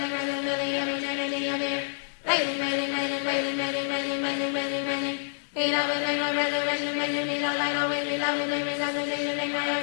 rise and living, and eternity of here. Raising. Be love, and make my resurrection, make me the light, always be love, and make me love the day, and make my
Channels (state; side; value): silent; right; digital silence